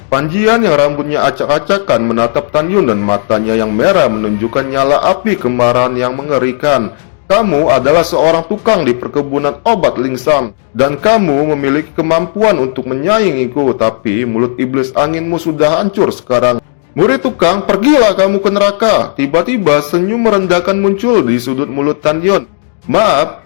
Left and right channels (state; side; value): silent; right; digital silence